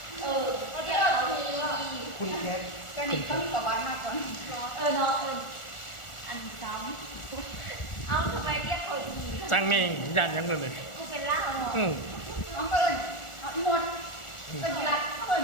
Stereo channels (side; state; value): right; late; 1.4 ms